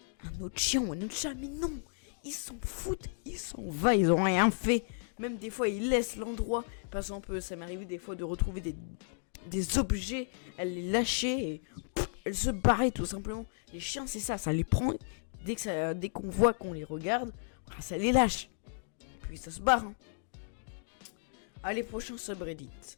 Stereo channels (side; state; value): right; silent; digital silence